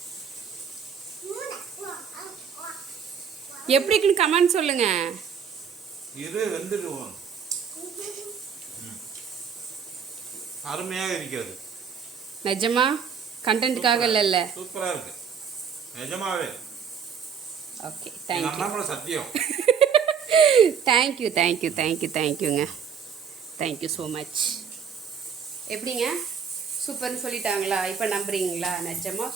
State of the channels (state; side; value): quieter; left; 6.9 dB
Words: எப்படி இருக்குன்னு கமெண்ட் சொல்லுங்க. இது வெந்துடுவோம். அருமையாக இருக்கிறது. நிஜமா கண்டென்ட்காக இல்ல. சூப்பரா இருக்கு நிஜமாவே. Okay, thank you. சத்தியம். Thank you thank you thank you thank யூங்க. Thank you so much. எப்படிங்க சூப்பர்னு சொல்லிட்டாங்களா? இப்போ நம்புறீங்களா? நிஜமாக